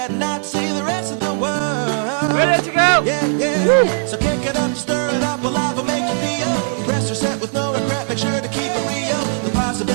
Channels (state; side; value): silent; left; digital silence